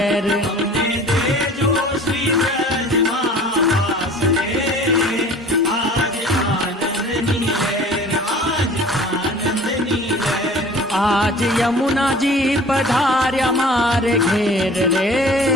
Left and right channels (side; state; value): both; normal; correlation 0.45